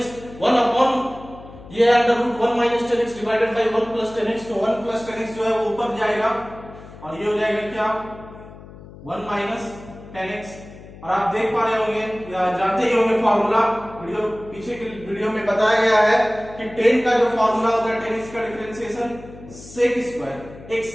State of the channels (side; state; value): left; noise; hum, 18 dB below the sound